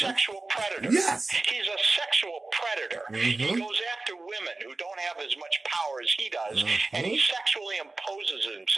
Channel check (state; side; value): quieter; left; 3.3 dB